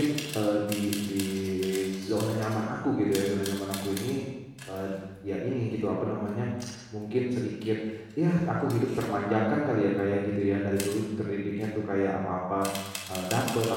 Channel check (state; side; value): identical; both; correlation 1.00